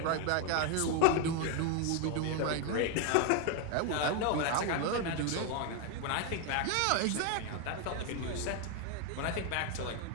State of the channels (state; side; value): different; both; correlation 0.01